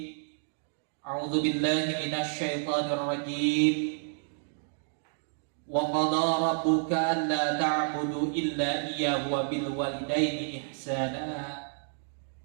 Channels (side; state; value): left; silent; digital silence